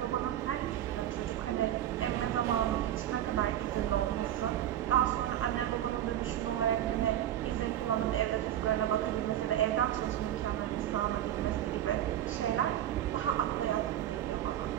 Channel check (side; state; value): left; quieter; 11.8 dB